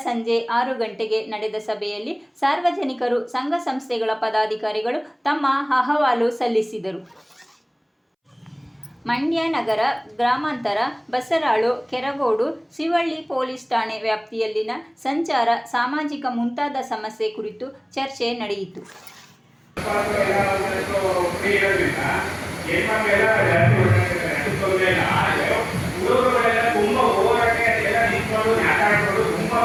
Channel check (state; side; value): identical; both; correlation 1.00